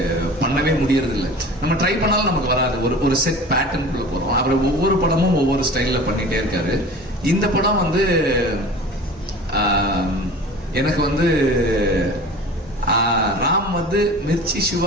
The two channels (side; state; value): both; normal; correlation 0.39